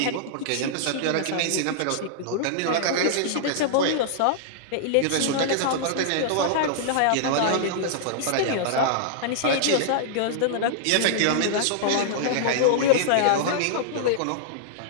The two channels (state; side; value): different; both; correlation -0.01